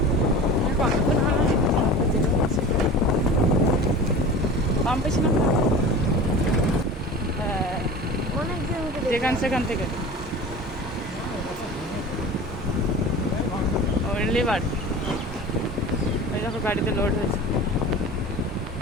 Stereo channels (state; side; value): normal; both; correlation 0.36